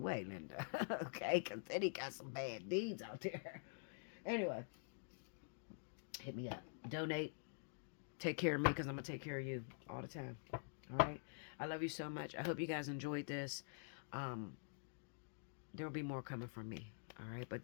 weigh, Linda. Okay? Because Diddy got some bad deeds out there. Anyway, hit me up. Donate. Take care of me because I'm going to take care of you all the time. All right? I love you so much. I hope you guys enjoyed this. There will be more coming from me. All right? But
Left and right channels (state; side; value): silent; right; digital silence